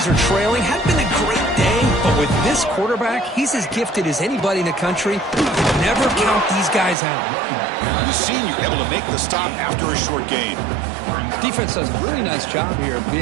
are trailing. Hadn't been a great day, but with this quarterback, he's as gifted as anybody in the country. Never count these guys out. The senior able to make the stop after a short gain. Defense does a really nice job here of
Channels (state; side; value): drops out; left; at 7.0 s